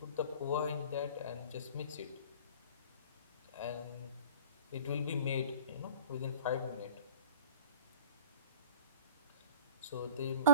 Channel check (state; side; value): inverted; both; correlation -0.44